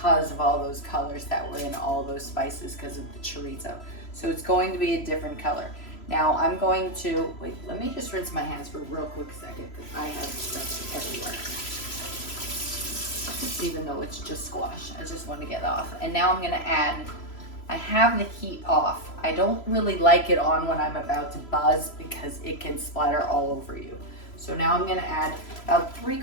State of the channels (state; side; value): late; right; 3.0 ms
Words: of all those colors that were in all those spices because of the chorizo. So it's going to be a different color. Now I'm going to, wait, let me just rinse my hands for a real quick second because I have stuff everywhere. Even though it's just squash, I just want to get off. And now I'm gonna add, I have the heat off. I don't really like it on when I'm about to buzz because it can splatter all over you. So now I'm gonna add about